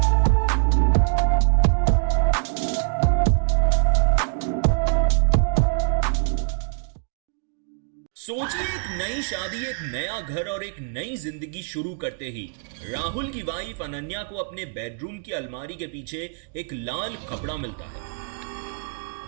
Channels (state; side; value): silent; left; digital silence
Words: सोचिए, एक नई शादी, एक नया घर और एक नई जिंदगी शुरू करते ही राहुल की वाइफ अनन्या को अपने बेडरूम की अलमारी के पीछे एक लाल कपड़ा मिलता